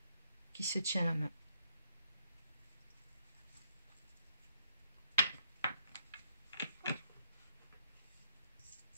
qui se tient la main.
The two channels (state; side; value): inverted; both; correlation -0.73